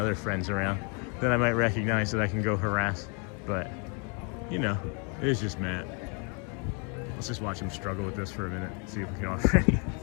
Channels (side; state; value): right; quieter; 35.7 dB